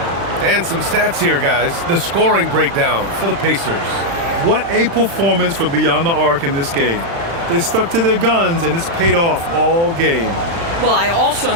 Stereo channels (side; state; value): left; late; 35 ms